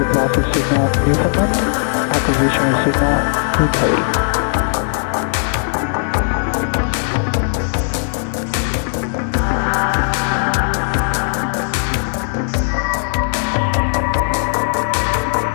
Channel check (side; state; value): right; silent; 61 dB below the other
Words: loss of signal Newfoundland. Acquisition of signal Untitled.